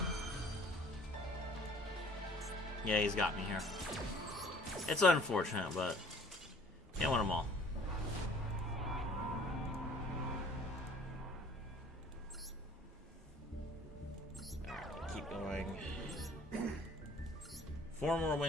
Yeah, he's got me here. It's unfortunate, but can't win them all. Alright, keep going. 4 more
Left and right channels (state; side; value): normal; both; correlation 0.54